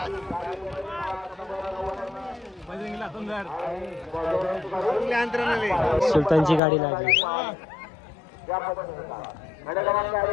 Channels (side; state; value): right; drops out; at 6.6 s